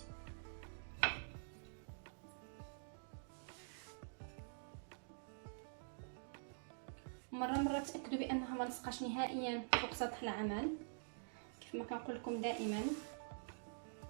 مره تاكدوا بانها ما لصقاش نهائيا فوق سطح العمل كيف ما كنقول لكم دائما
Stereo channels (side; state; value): left; silent; digital silence